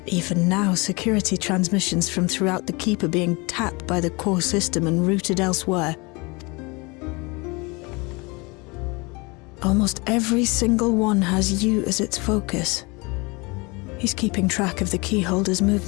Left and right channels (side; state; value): right; quieter; 26.9 dB